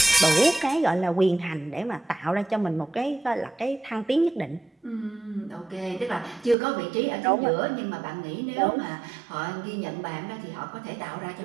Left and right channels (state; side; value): drops out; left; at 6.6 s